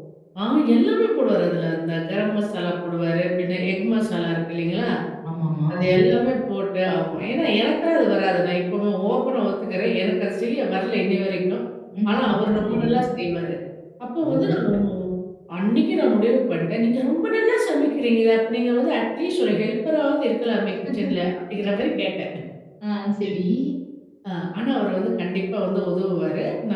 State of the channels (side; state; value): both; identical; correlation 1.00